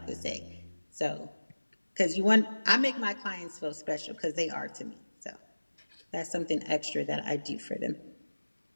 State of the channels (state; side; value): inverted; both; correlation -1.00